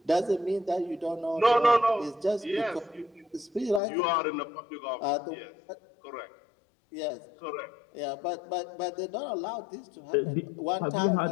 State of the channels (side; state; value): right; drops out; at 3.8 s